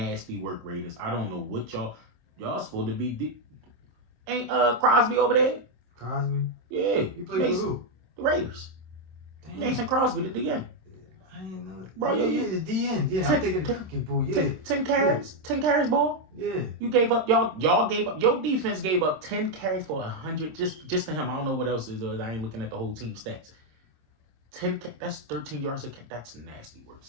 work, Raiders. I don't know what y'all supposed to be. Ain't Crosby over there? Crosby? Yeah. He played for who? The Raiders. Damn. Mason Crosby did the end. I didn't know that. bro. Yeah, the DN. Yeah, I'm thinking the cookie, bro. Yeah. 10 carries. 10 carries, boy. Yeah. You gave up, y'all gave up, your defense gave up 10 carries for 100 just to him. I don't know what else is. I ain't looking at the whole team stats. 10, that's 13 yards a catch. That's nasty work,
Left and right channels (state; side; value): late; left; 26 ms